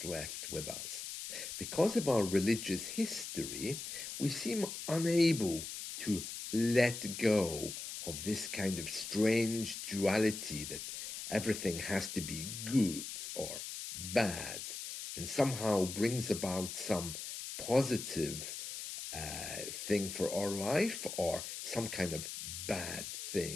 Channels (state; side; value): noise; left; hiss, 7 dB below the sound